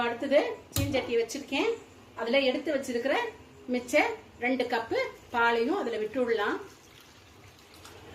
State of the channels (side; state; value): both; identical; correlation 1.00